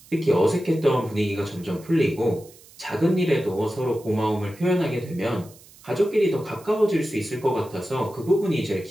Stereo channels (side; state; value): right; noise; hiss, 24 dB below the sound